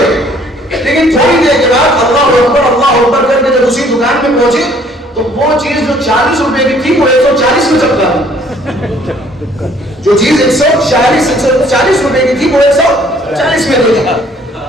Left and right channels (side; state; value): both; normal; correlation 0.60